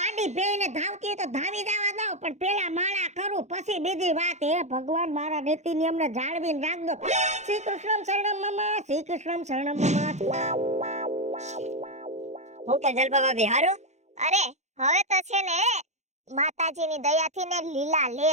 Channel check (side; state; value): left; late; 0.33 ms